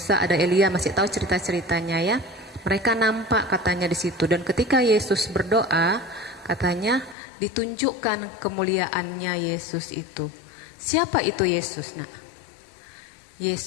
ada Elia, masih tahu cerita-ceritanya ya. Mereka nampak katanya di situ, dan ketika Yesus berdoa, katanya ditunjukkan kemuliaannya Yesus itu. Siapa itu Yesus nak?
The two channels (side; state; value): right; drops out; at 7.2 s